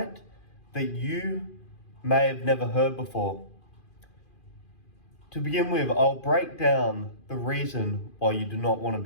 that you may have never heard before. To begin with, I'll break down the reason why you do not want to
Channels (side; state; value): right; late; 2.4 ms